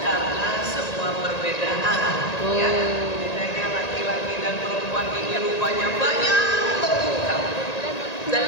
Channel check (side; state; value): right; late; 1.9 ms